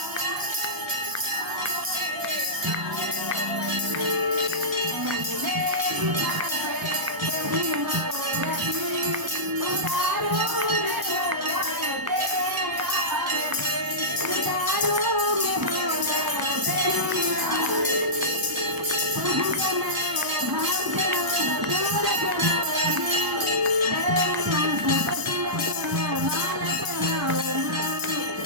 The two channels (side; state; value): left; late; 1.0 ms